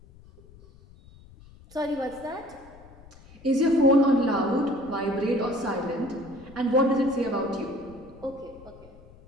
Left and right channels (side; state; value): left; noise; rumble, 23 dB below the sound